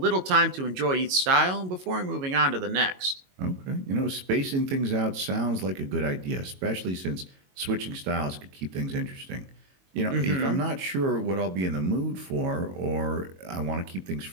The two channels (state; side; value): late; left; 22 ms